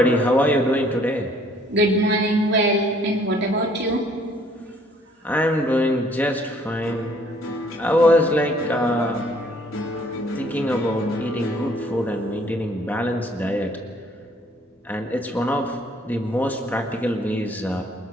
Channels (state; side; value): normal; both; correlation 0.61